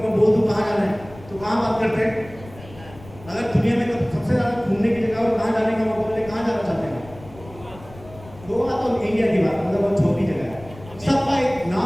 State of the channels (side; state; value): left; noise; rumble, 19 dB below the sound